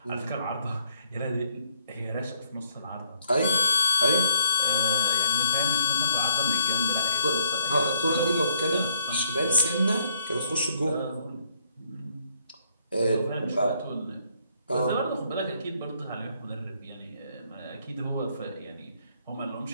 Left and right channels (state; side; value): inverted; both; correlation -0.69